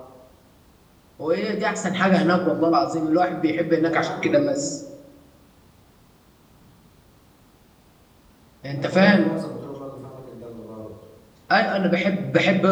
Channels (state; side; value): identical; both; correlation 1.00